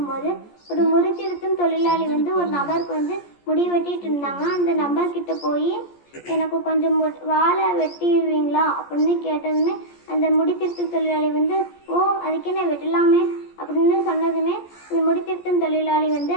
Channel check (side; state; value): right; late; 14 ms